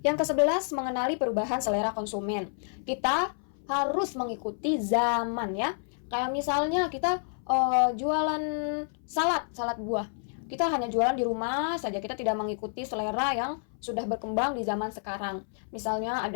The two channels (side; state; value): right; silent; 58 dB below the other